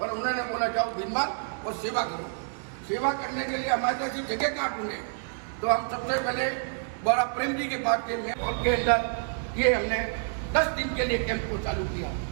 उन्होंने बोला जाओ भीनमाल और सेवा करो। सेवा करने के लिए हमारे पास जगह कहाँ ढूंढे, तो हम सबसे पहले बड़ा प्रेम जी के पास गए और के अंदर ये हमने 10 दिन के लिए कैंप को चालू किया।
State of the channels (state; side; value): silent; left; digital silence